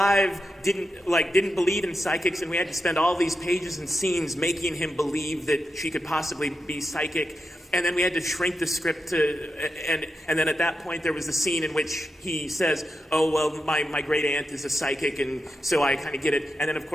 didn't believe in psychics, and we had to spend all these pages and scenes making him believe that she could possibly be psychic. And then we had to shrink the script and then at that point there was the scene in which he says, oh, well, my great aunt is a psychic, and so I kind of get it. And then, of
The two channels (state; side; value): normal; both; correlation 0.87